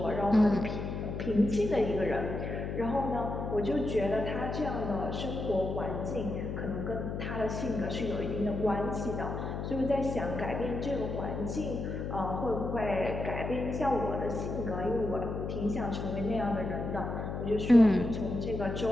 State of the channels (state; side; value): noise; left; hum, 4 dB below the sound